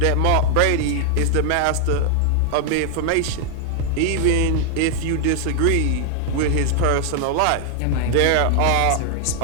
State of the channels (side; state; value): both; different; correlation 0.00